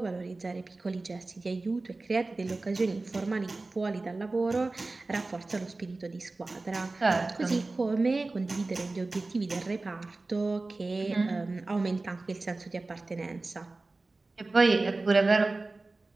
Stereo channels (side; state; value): left; quieter; 3.3 dB